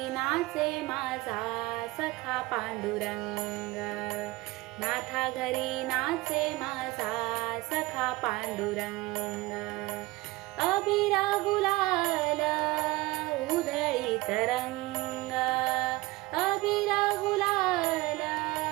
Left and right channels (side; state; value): left; quieter; 20.9 dB